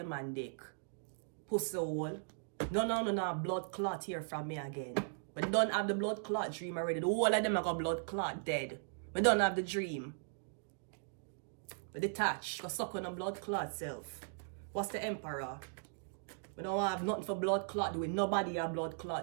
man dick. Pussy hole. No blood clot here from me again. But don't have the blood clot dream already. The whole of them are got blood clot dead. But don't have the dream. But detach. Go suck on the blood clot self. What's the Emperor? We don't have nothing for blood clot doing. Nobody have blood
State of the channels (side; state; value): left; silent; digital silence